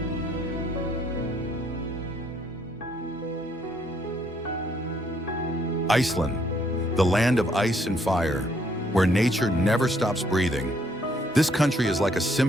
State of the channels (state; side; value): normal; both; correlation 0.68